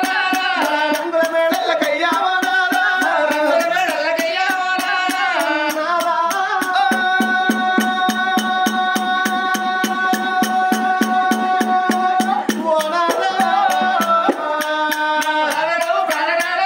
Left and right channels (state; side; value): identical; both; correlation 1.00